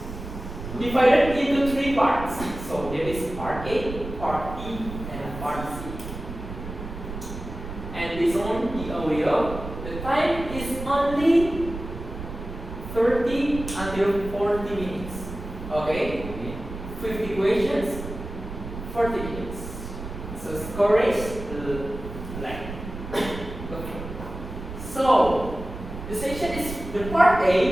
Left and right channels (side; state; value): right; noise; rumble, 9 dB below the sound